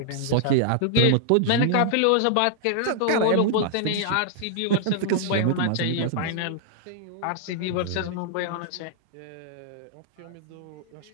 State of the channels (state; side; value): different; both; correlation -0.01